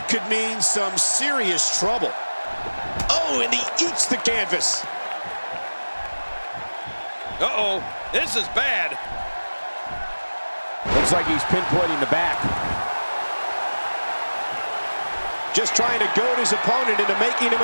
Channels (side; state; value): both; inverted; correlation -1.00